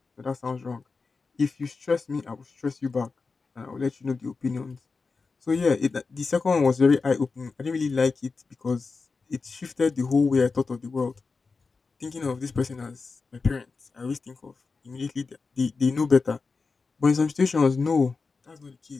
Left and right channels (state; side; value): quieter; right; 4.4 dB